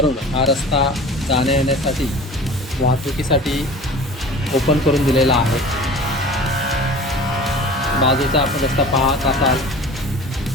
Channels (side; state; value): both; normal; correlation 0.40